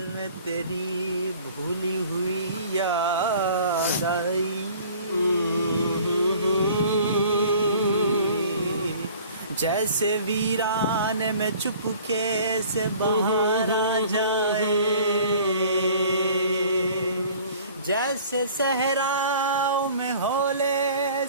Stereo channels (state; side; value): inverted; both; correlation -0.49